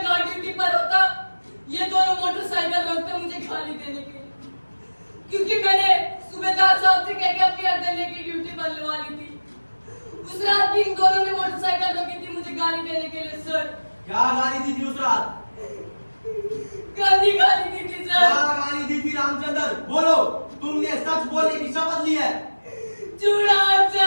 गार्ड ड्यूटी पर होता, ये दोनों मोटरसाइकिल रोकते मुझे गाली देने के लिए, क्योंकि मैंने सूबेदार साहब से कह के अपनी अर्दले की ड्यूटी बदलवा ली थी। उस रात भी इन दोनों ने मोटरसाइकिल रोकी थी मुझे गाली देने के लिए सर। क्या गाली दी थी उस रात? गंदी गाली दी थी क्या सर। गाली दी थी रामचंद्र? बोलो, तुमने सच बोलने की शपथ ली है। चूड़ा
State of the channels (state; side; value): inverted; both; correlation -1.00